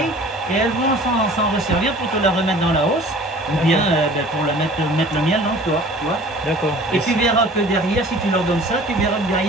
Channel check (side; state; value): both; normal; correlation 0.46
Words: et elles vont s'en resservir pour te la remettre dans la hausse. Ou bien pour la mettre le miel dans le toit, tu vois. D'accord. Et tu verras que derrière, si tu leur donnes ça, tu verras que